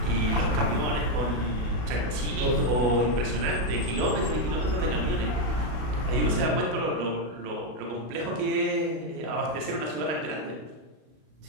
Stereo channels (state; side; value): late; left; 33 ms